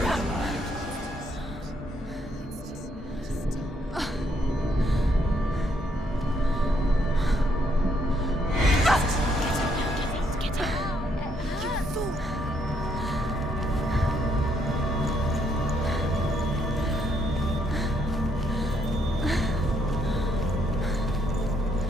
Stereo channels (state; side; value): normal; both; correlation 0.72